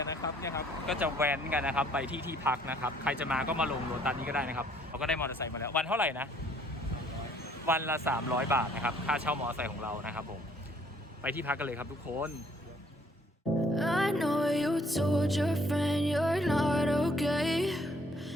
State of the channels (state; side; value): normal; both; correlation 0.62